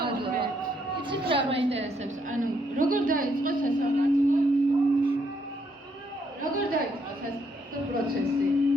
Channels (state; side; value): normal; both; correlation 0.73